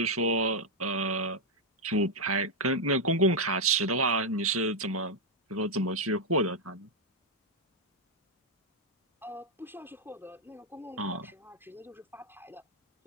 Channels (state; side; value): normal; both; correlation -0.02